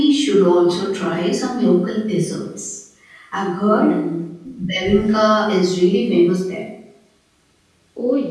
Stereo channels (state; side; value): identical; both; correlation 1.00